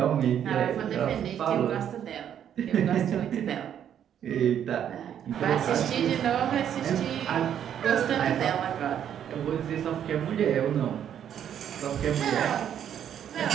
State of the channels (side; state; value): left; quieter; 9.5 dB